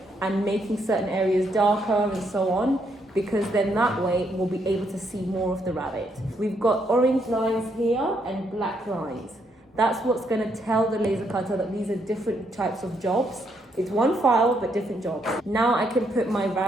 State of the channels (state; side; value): normal; both; correlation 0.75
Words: and making certain areas darker and so on, because then that way we'll be able to see more of the rabbit. We've got orange lines here and black lines. That's what's going to tell the laser cutter that these are different types of jobs. It's one file, but different jobs. Now I can put my